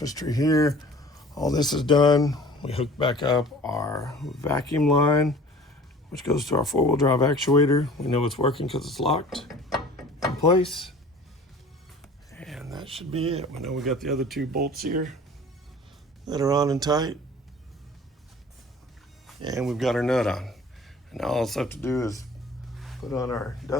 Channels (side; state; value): both; normal; correlation 0.46